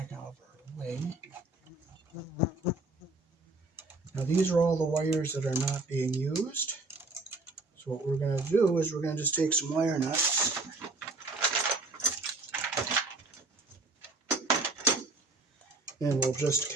out of our way. Now these are all the wires that are not being used. So what we're going to do is we're going to just take some wire nuts and we'll just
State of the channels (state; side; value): quieter; left; 3.2 dB